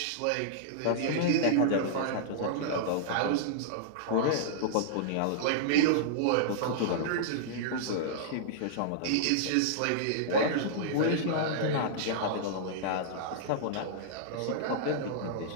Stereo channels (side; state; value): both; different; correlation -0.02